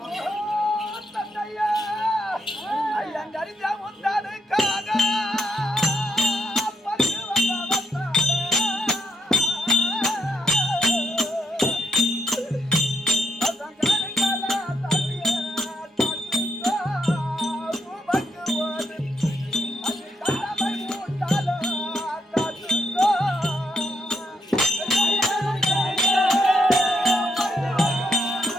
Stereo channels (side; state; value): both; normal; correlation 0.77